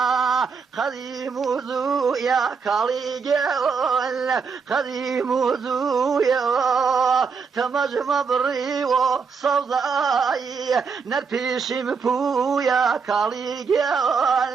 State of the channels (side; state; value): left; quieter; 5.5 dB